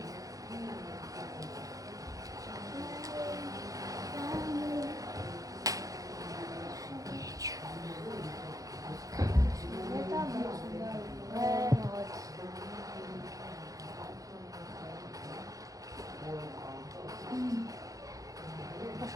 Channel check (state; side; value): late; left; 0.17 ms